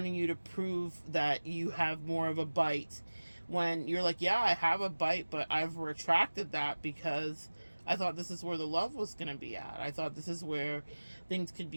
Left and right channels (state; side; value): inverted; both; correlation -1.00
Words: you to prove that you have more of a bite, when you're like, yeah, I have a bite, but I've retracted that because I thought this is where the love was going to be at. I thought this is where things could